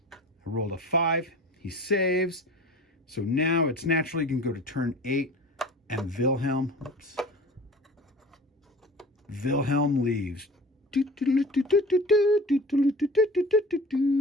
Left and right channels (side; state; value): both; normal; correlation 0.40